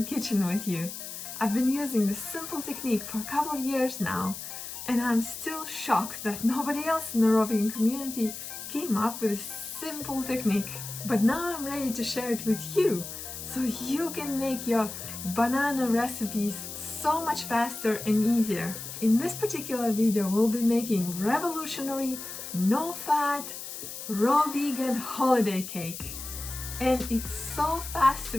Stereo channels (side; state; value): left; noise; hiss, 9 dB below the sound